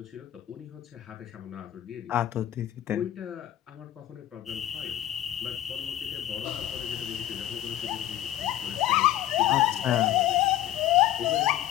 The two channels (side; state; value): right; quieter; 13.0 dB